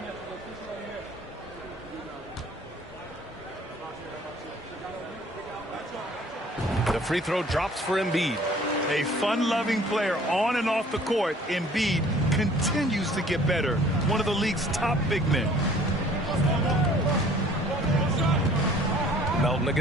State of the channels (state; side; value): normal; both; correlation 0.53